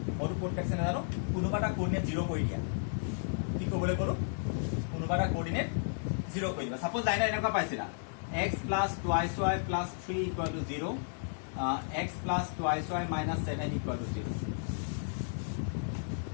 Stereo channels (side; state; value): right; silent; digital silence